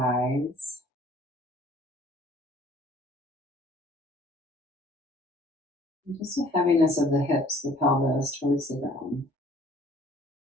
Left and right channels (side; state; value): both; normal; correlation 0.56